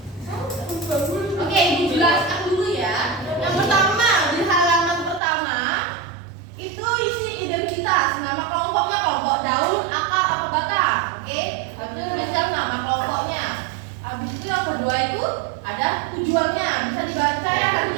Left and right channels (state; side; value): drops out; left; at 5.2 s